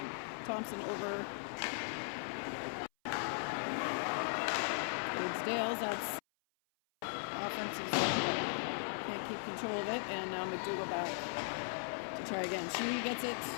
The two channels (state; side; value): silent; right; 52 dB below the other